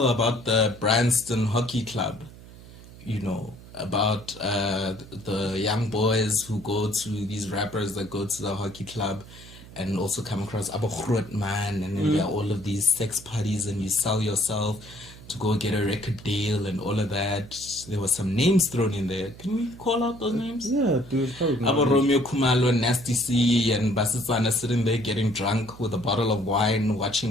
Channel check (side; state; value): right; noise; hum, 18 dB below the sound